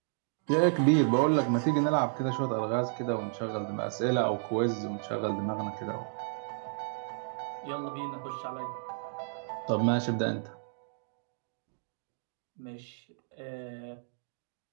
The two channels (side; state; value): left; silent; digital silence